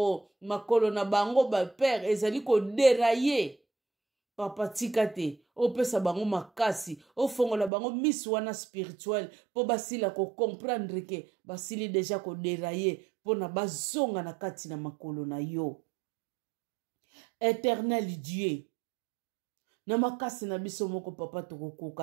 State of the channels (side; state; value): left; drops out; at 7.7 s